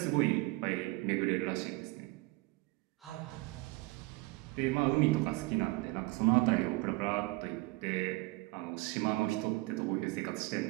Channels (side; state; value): left; quieter; 22.6 dB